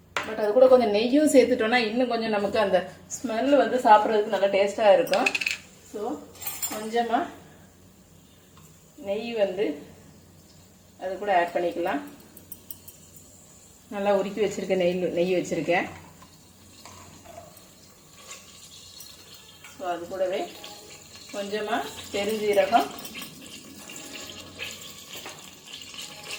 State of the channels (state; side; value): identical; both; correlation 1.00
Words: பட் அது கூட கொஞ்சம் நெய்யும் சேர்த்துட்டோன்னா இன்னும் கொஞ்சம் நமக்கு அந்த ஸ்மெல் வந்து சாப்பிட்றதுக்கு நல்லா டேஸ்ட்டாக இருக்கும். ஸோ கொஞ்சமாக நெய் வந்து அது கூட ஆட் பண்ணிக்கலாம். நல்லா உருக்கி வச்சுருக்கேன், நெய் வச்சுருக்கேன். ஸோ அது கூடவே கொஞ்சமாக